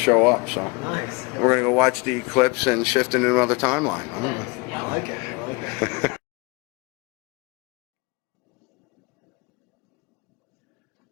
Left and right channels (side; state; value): right; quieter; 27.2 dB